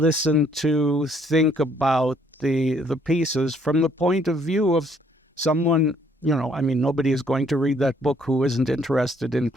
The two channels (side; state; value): both; normal; correlation 0.65